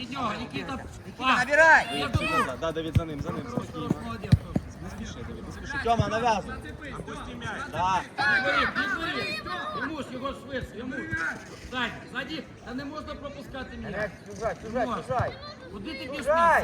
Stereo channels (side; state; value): both; identical; correlation 1.00